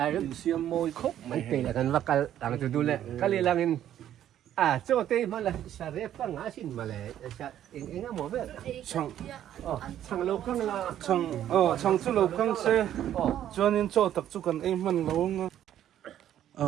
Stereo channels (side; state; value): left; quieter; 11.2 dB